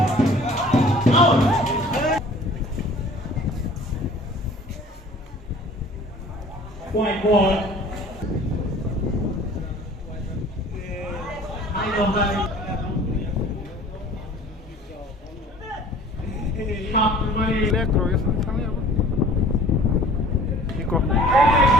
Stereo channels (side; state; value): both; normal; correlation 0.49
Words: white ball. Nico.